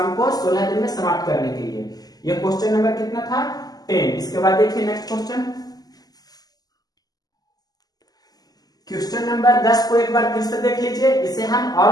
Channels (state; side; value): late; right; 0.18 ms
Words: को 16 दिन में समाप्त करने के लिए। ये क्वेश्चन नंबर कितना था 10। इसके बाद देखिए नेक्स्ट क्वेश्चन नंबर 10 को एक बार फिर से देख लीजिए। इसे हम